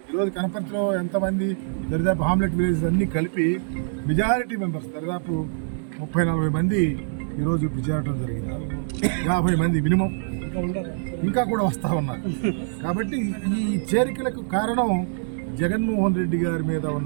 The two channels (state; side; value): silent; left; digital silence